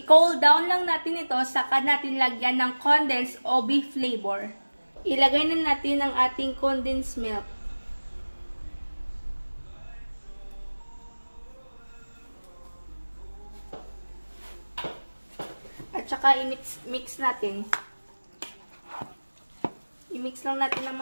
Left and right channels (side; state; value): both; inverted; correlation -1.00